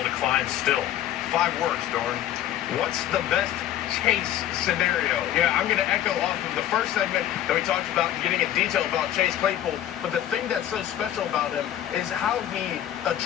to climb still. 5 words, Doran. What's the best Chase scenario? Yeah, I'm going to echo off of the first segment that we talked about, getting in detail about Chase Claypool, but the thing that's so special about him is how he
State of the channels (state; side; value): quieter; right; 12.0 dB